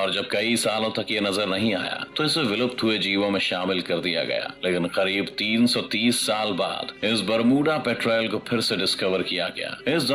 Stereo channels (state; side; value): identical; both; correlation 1.00